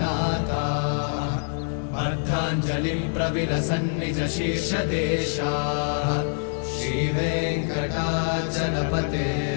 अर्धाञ्जलिं प्रविलसन्निज शीर्षदेशाः श्रीवेङ्कटाचलपते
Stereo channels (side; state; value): right; silent; 62 dB below the other